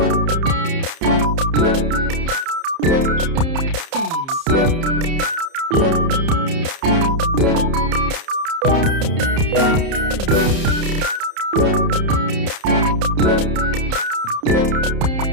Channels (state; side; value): late; left; 30 ms